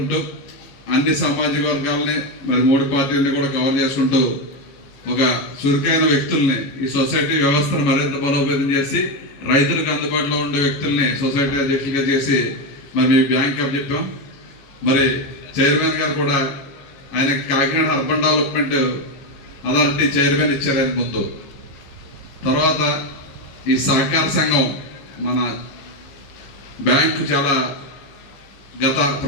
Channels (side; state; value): right; late; 14 ms